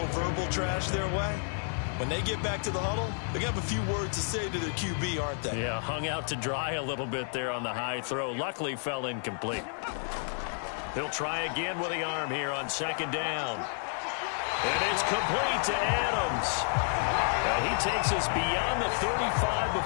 verbal trash their way, when they get back to the huddle, they're going to have a few words to say to their QB, aren't they? Yeah, hung out to dry a little bit there on the high throw. Luckily fell incomplete. He'll try again with the arm here on second down. And it's complete to Adams. And he takes us beyond the 35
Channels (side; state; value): right; silent; 56 dB below the other